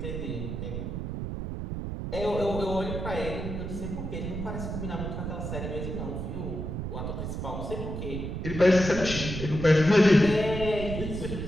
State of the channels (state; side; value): noise; right; rumble, 5 dB below the sound